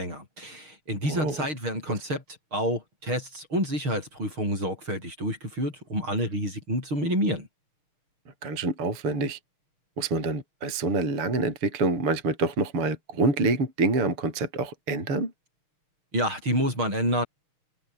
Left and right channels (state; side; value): late; left; 6.5 ms